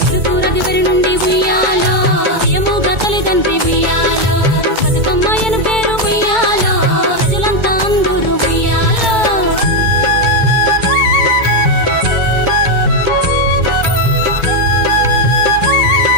తిరుపురదివరి నుండి ఉయ్యాలో ప్రియముగా తల్లిదండ్రి ఉయ్యాలో బతుకమ్మయ్యను పేరు ఉయ్యాలో ప్రజలంతా అందరూ ఉయ్యాలో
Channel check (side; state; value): left; late; 2.2 ms